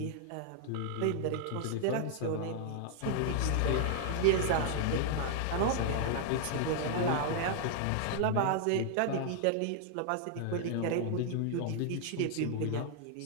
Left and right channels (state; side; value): different; both; correlation 0.00